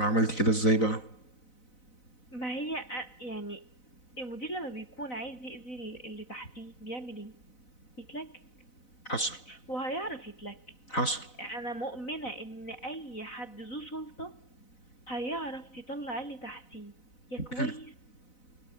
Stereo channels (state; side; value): late; right; 4.0 ms